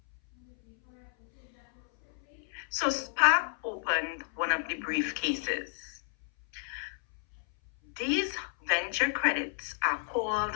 So Spark opened one of the briefcases. These venture credits are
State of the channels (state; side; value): silent; right; 57 dB below the other